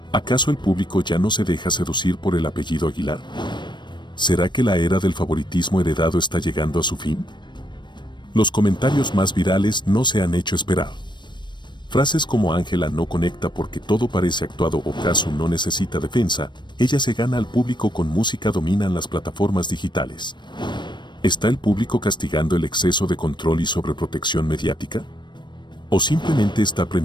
¿Acaso el público ya no se deja seducir por el apellido Aguilar? ¿Será que la era del favoritismo heredado está llegando a su fin? Los comentarios más virales no se han hecho esperar. Frases como Ángela no conecta porque todo parece actuado o Cazzu no necesita defensa, ella se gana al público con música dominan las plataformas digitales. ¿Está el público castigando el exceso de control y sobreprotección mediática? ¿O simplemente está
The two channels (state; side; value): late; right; 0.22 ms